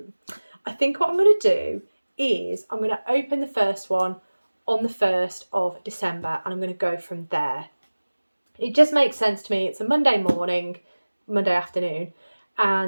I think what I'm going to do is I'm going to open the first one on the 1st of December, and I'm going to go from there. It just makes sense to me. It's a Monday morning, Monday afternoon,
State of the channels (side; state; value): both; inverted; correlation -1.00